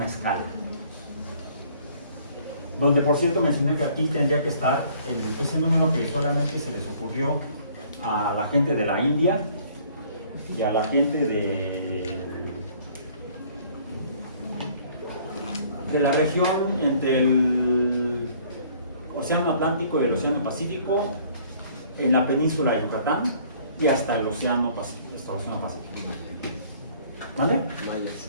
escala. Donde, por cierto, mencioné que aquí tendría que estar ese número que solamente se les ocurrió a la gente de la India y a la gente de la región entre el Océano Atlántico y el Océano Pacífico, en la península de Yucatán y hasta el Océano Pacífico. ¿Vale?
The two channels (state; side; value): inverted; both; correlation -0.57